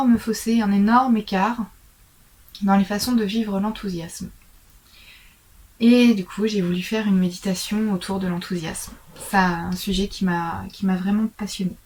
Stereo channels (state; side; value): identical; both; correlation 1.00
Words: fossé, un énorme écart dans les façons de vivre l'enthousiasme. Et du coup, j'ai voulu faire une méditation autour de l'enthousiasme. C'est un sujet qui m'a vraiment passionnée.